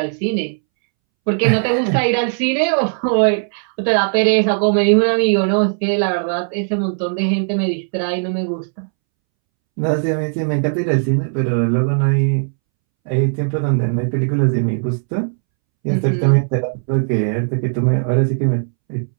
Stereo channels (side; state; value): left; silent; 66 dB below the other